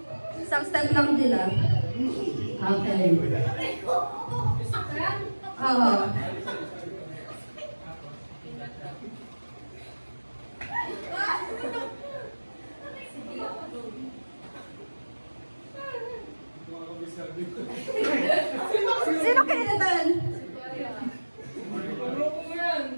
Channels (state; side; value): inverted; both; correlation -1.00